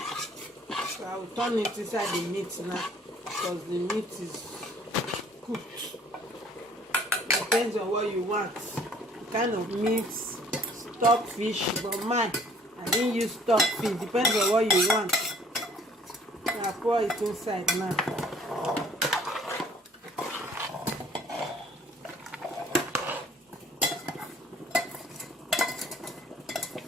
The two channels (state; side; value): normal; both; correlation 0.56